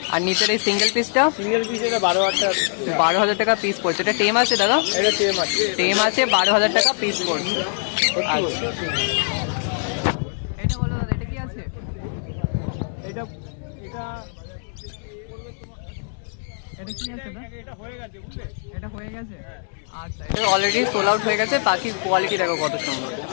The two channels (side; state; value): right; silent; digital silence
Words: আর নিচের এই সিঙ্গেল পিসটা? সিঙ্গেল পিস এটা 12,000 টাকা। 12,000 টাকা পিস পড়ছে। এটা টেম আছে দাদা? এটা টেম আছে। টেম আছে, 12,000 টাকা পিস পড়ছে। আচ্ছা, এটা বলো দাদা, এটা কি আছে? এটা এটা পড়বে তোমার, এটা কি আছে দাদা? এটা হয়ে গেছে বুঝলে। এটা হয়ে গেছে? হ্যাঁ। আচ্ছা, এটা অলরেডি সোল আউট হয়ে গেছে। বাকি কোয়ালিটি দেখো কত সুন্দর।